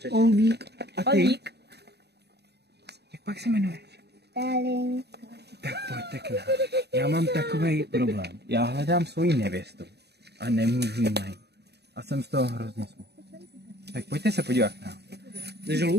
Olvík. A ty? Olvík. Jak pak se jmenuješ? Tak pojďte k nám. Já mám takovej problém. Já hledám svoji nevěstu a nemůžu ji najít. A jsem z toho hrozně smutný. Tak pojďte se podívat k nám.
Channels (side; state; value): left; late; 0.48 ms